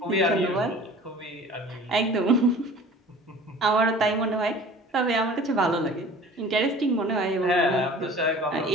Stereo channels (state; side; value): normal; both; correlation 0.44